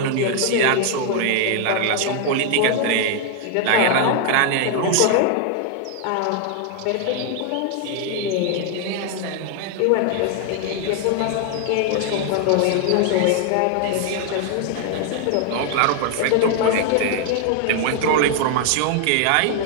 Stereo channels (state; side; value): different; both; correlation 0.00